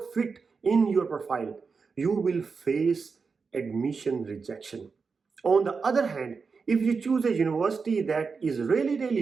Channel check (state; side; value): quieter; left; 5.0 dB